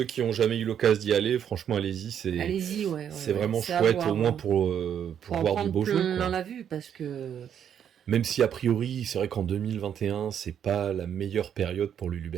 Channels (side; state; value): left; quieter; 8.9 dB